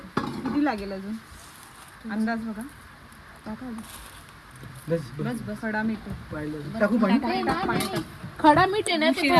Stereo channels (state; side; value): identical; both; correlation 1.00